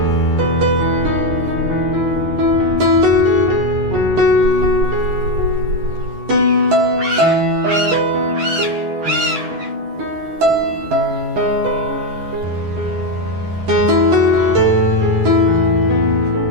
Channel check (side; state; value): left; late; 11 ms